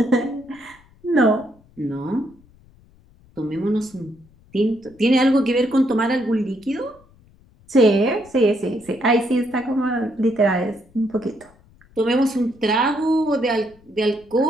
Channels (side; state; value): left; noise; rumble, 29 dB below the sound